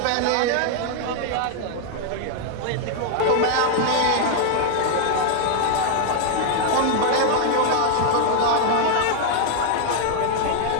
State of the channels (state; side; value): different; both; correlation 0.00